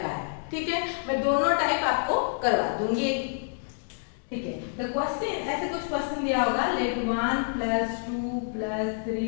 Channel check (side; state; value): right; silent; digital silence